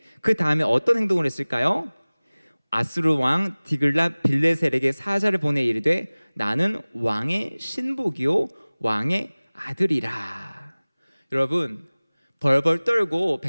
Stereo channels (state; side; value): inverted; both; correlation -1.00